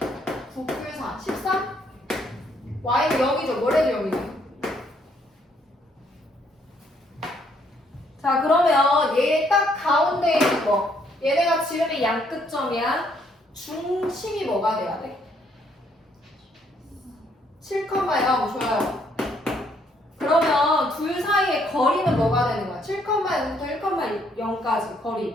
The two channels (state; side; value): normal; both; correlation 0.69